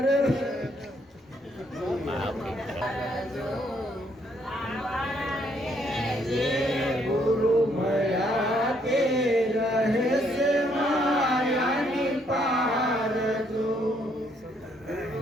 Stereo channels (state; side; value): normal; both; correlation 0.70